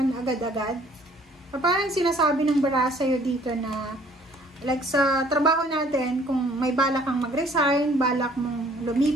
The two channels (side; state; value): both; normal; correlation 0.58